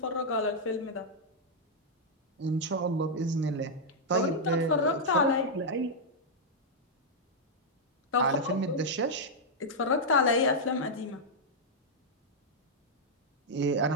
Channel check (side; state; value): both; normal; correlation -0.05